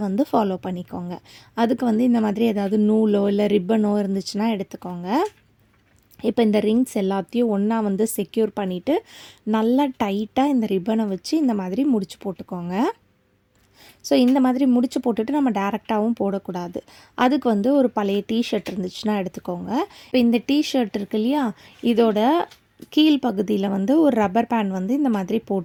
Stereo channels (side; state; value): both; identical; correlation 1.00